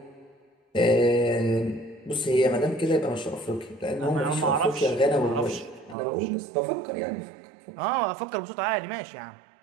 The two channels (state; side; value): drops out; left; at 6.0 s